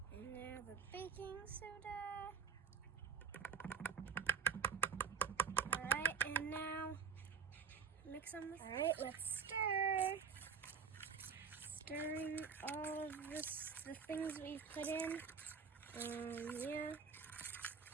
And now the baking soda. Alright, and now mix them. Alright, let's stir. Stirring all of the things we've put in. Yeah.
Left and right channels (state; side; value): quieter; left; 6.2 dB